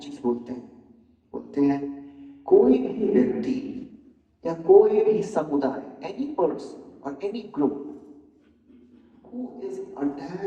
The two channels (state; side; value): identical; both; correlation 1.00